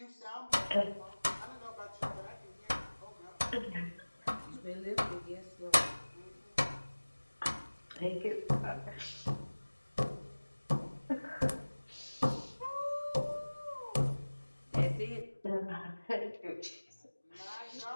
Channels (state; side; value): inverted; both; correlation -1.00